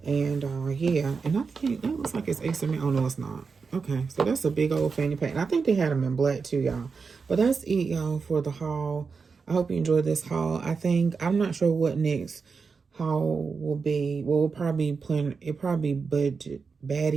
And yeah, and I think that looks like it's XML. Oh no, it's not. Okay, so that's a big old fanny pack. And I think they had them in black too, y'all. But that's it, y'all, for the haul. I hope you enjoyed this haul. I'm not sure what next haul will be. Well, we'll probably be planning, it probably budget,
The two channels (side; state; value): left; quieter; 5.1 dB